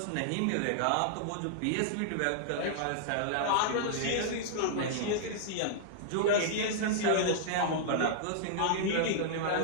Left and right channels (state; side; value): different; both; correlation -0.01